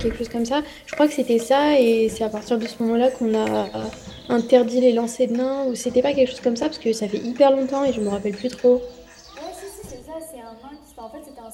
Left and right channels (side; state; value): both; identical; correlation 1.00